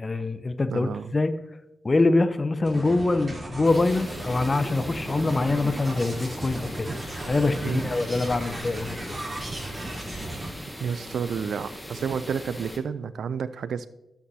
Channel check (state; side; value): normal; both; correlation 0.93